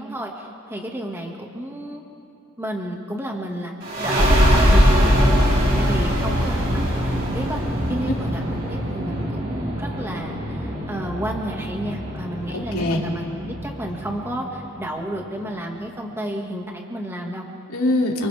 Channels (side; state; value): both; normal; correlation 0.75